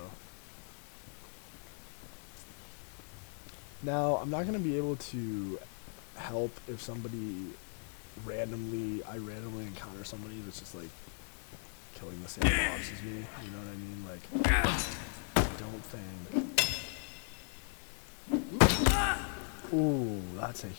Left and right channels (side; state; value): right; silent; 53 dB below the other